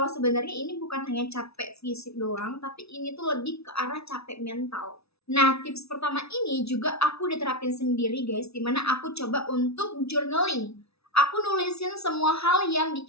sebenarnya ini bukan hanya capek fisik doang, tapi ini tuh lebih ke arah capek mental. Nah, tips pertama ini juga aku udah terapin sendiri guys, dimana aku coba untuk journaling. Aku nulisin semua hal yang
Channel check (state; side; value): late; right; 0.79 ms